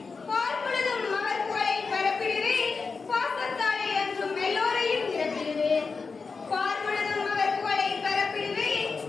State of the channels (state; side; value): quieter; right; 4.7 dB